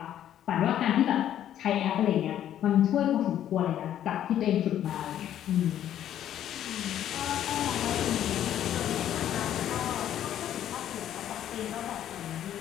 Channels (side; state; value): right; quieter; 11.1 dB